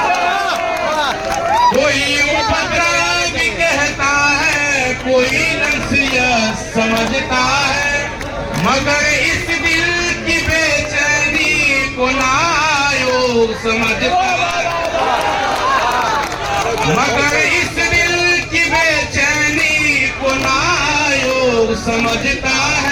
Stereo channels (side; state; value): both; identical; correlation 1.00